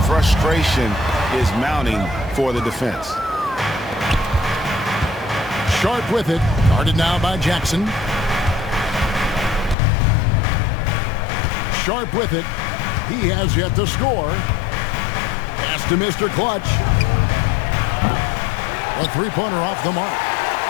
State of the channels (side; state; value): right; drops out; at 9.8 s